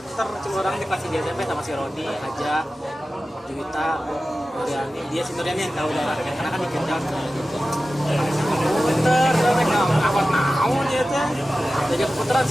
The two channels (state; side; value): normal; both; correlation 0.95